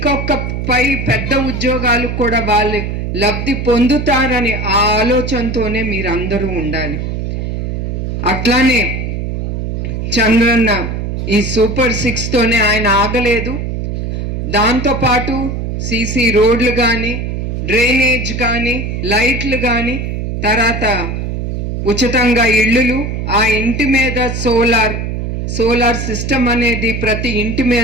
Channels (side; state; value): right; noise; hum, 3 dB below the sound